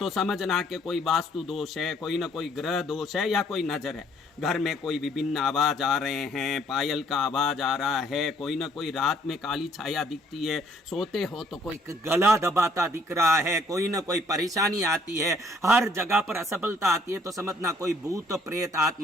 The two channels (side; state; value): both; normal; correlation 0.63